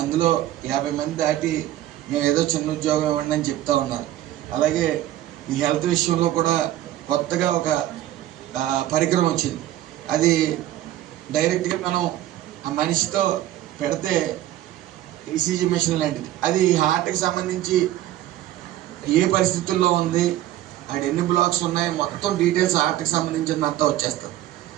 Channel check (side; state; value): left; quieter; 13.7 dB